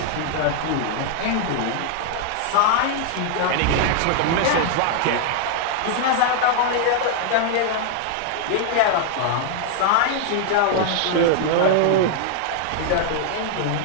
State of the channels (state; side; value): different; both; correlation 0.00